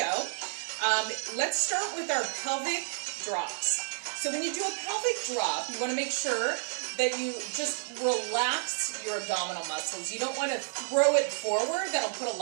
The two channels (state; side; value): silent; left; digital silence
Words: Let's start with our pelvic drops. So when you do a pelvic drop, you want to make sure that you just relax your abdominal muscles. You don't want to throw it forward. That'll put a